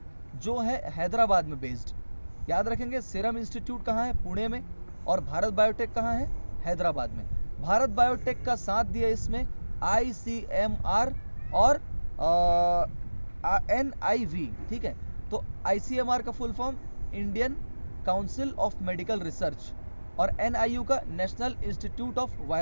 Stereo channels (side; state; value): both; inverted; correlation -1.00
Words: जो है हैदराबाद में बेस्ड। याद रखेंगे, सीरम इंस्टीट्यूट कहाँ है? पुणे में, और भारत बायोटेक कहाँ है? हैदराबाद में। भारत बायोटेक का साथ दिया इसमें ICMR और NIV, ठीक है। तो ICMR का full form Indian council of medical research, और NIU का नेशनल इंस्टीट्यूट ऑफ